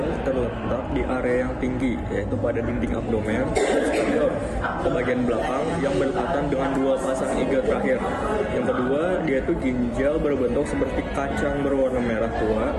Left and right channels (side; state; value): both; identical; correlation 1.00